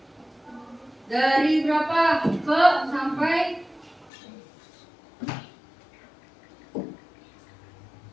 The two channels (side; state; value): right; drops out; at 4.1 s